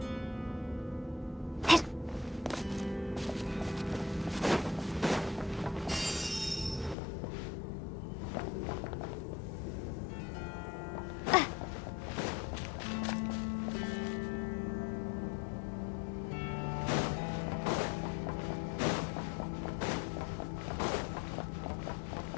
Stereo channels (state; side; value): drops out; right; at 7.0 s